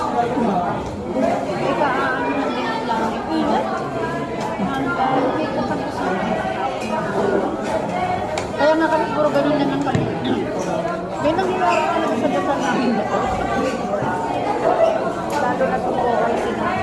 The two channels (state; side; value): identical; both; correlation 1.00